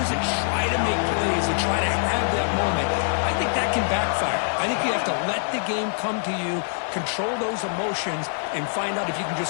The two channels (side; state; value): right; silent; digital silence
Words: that try to make plays, that try to have that moment, I think that can backfire. I think you have to let the game come to you, control those emotions, and find out if you can